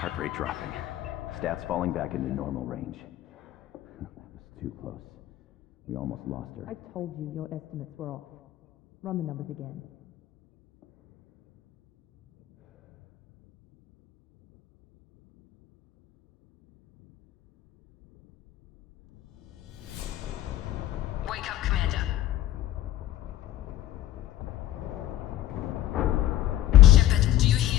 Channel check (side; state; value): right; quieter; 13.8 dB